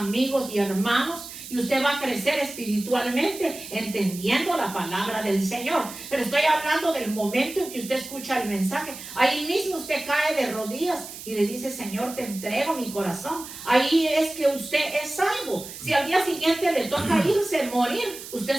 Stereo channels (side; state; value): right; noise; hiss, 13 dB below the sound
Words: y hermanos, y usted va a crecer espiritualmente entendiendo la palabra del Señor. Pero estoy hablando del momento en que usted escucha el mensaje. Ahí mismo usted cae de rodillas y le dice: Señor, te entrego mi corazón. Ahí es que usted es salvo. Si al día siguiente le toca irse, morir, usted